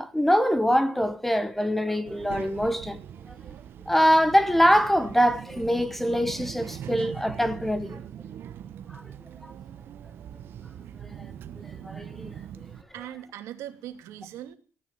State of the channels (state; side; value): normal; both; correlation 0.95